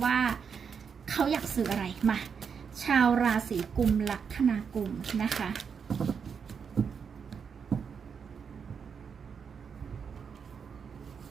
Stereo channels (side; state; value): left; quieter; 6.5 dB